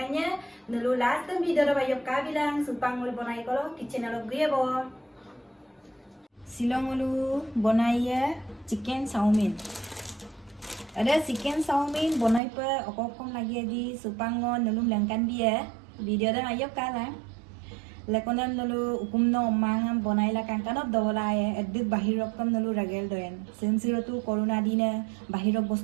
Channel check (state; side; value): drops out; left; at 12.4 s